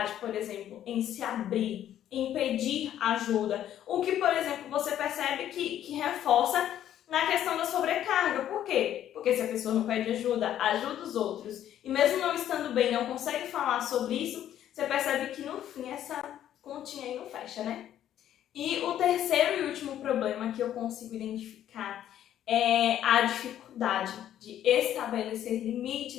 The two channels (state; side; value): quieter; right; 11.2 dB